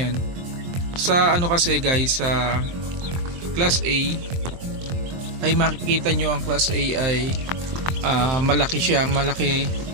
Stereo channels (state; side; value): late; left; 23 ms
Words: Sa ano kasi guys, sa Class A ay makikita nyo ang Class A ay malaki siya,